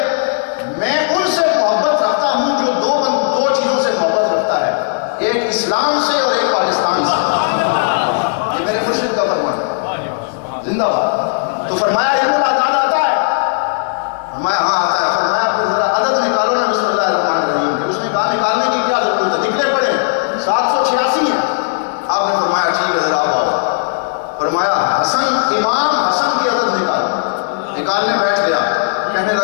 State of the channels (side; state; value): right; silent; digital silence